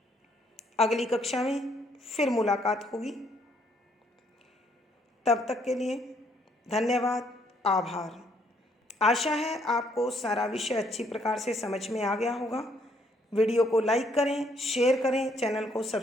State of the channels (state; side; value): normal; both; correlation 0.69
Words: अगली कक्षा में फिर मुलाकात होगी। तब तक के लिए धन्यवाद, आभार। आशा है आपको सारा विषय अच्छी प्रकार से समझ में आ गया होगा। वीडियो को लाइक करें, शेयर करें, चैनल को